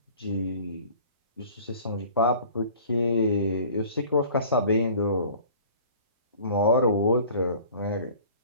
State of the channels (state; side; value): inverted; both; correlation -0.48